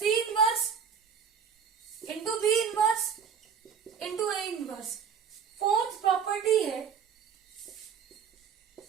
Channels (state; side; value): quieter; left; 7.1 dB